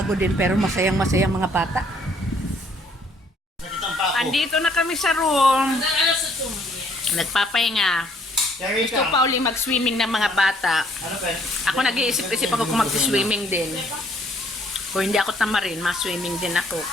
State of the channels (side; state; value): both; normal; correlation 0.64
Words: din pero masayang-masayang mga bata. Andito na kami sa room. Nagpapahinga. Gusto pa uli mag-swimming ng mga bata. Ako nag-iisip-isip ako kung mag-swimming din. Kung hindi ako tamarin, ma-swimming din ako.